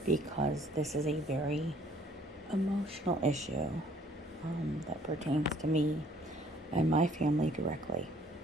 because this is a very emotional issue that pertains to me and my family directly.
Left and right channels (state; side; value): normal; both; correlation 0.59